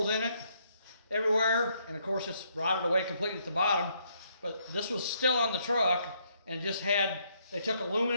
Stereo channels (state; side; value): inverted; both; correlation -0.72